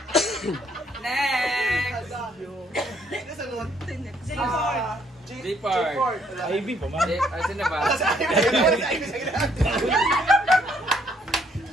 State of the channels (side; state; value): both; normal; correlation 0.68